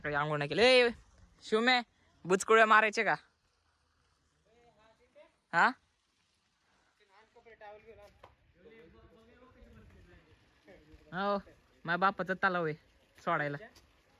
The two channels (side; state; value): both; identical; correlation 1.00